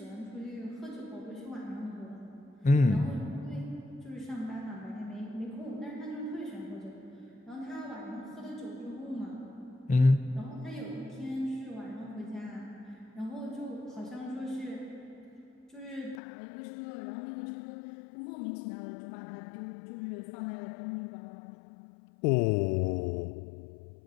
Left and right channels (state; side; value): drops out; right; at 16.2 s